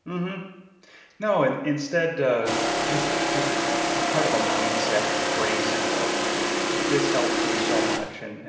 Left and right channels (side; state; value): both; identical; correlation 1.00